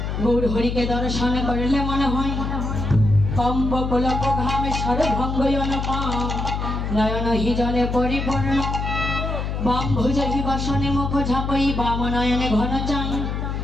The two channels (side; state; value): left; noise; hum, 3 dB below the sound